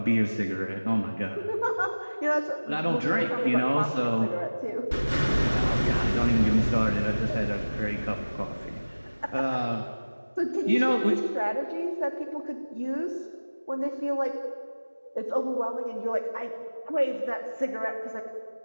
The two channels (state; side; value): inverted; both; correlation -1.00